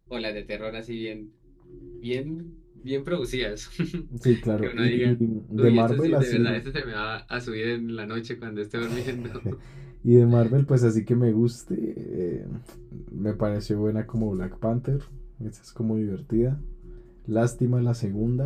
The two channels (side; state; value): both; identical; correlation 1.00